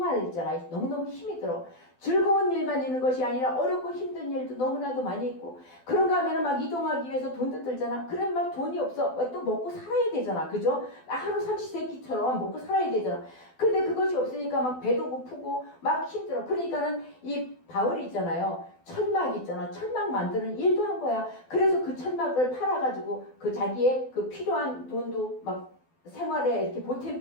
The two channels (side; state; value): right; late; 12 ms